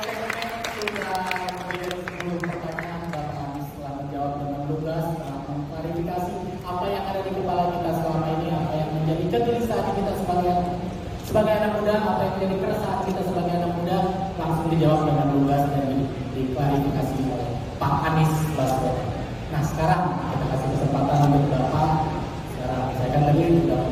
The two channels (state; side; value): identical; both; correlation 1.00